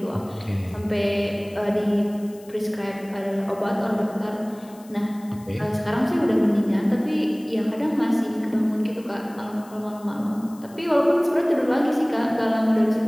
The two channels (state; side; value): noise; left; hiss, 25 dB below the sound